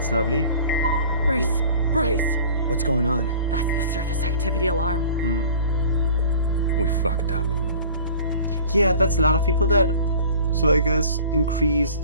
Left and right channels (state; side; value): inverted; both; correlation -0.45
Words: lovely. Brace! Brace! What's going on? That's the surface activity alarm. We fucked up. Yeah, that's a lot of people dead. So I guess increased